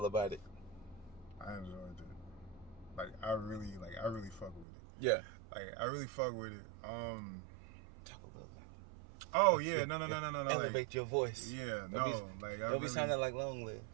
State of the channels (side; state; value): left; drops out; at 4.7 s